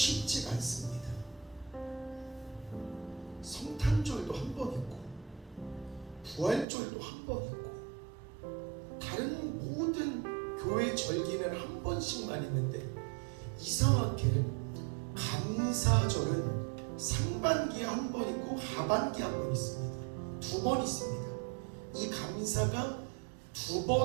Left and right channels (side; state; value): left; drops out; at 6.7 s